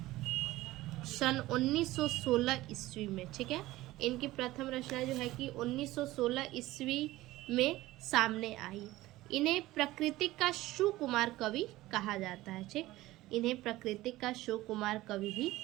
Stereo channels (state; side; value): quieter; left; 17.3 dB